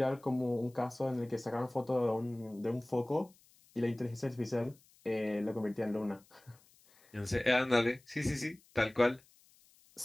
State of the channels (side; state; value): left; noise; hiss, 29 dB below the sound